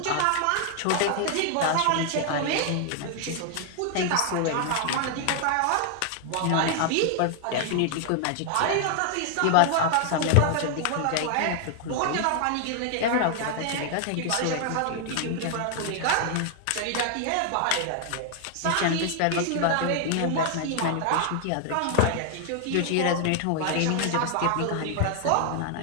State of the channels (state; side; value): different; both; correlation 0.00